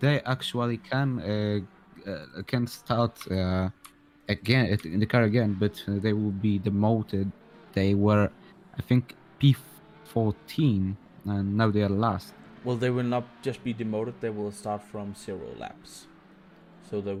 actually can start again in the car again, but they will be demoted. They were, I think, P14, and now they are last. well, they will not just be demoted. They will start from 0 laps. So there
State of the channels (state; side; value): identical; both; correlation 1.00